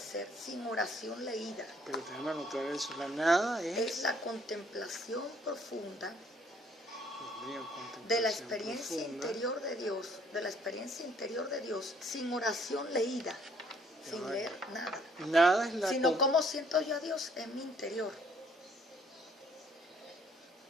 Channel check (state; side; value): normal; both; correlation 0.63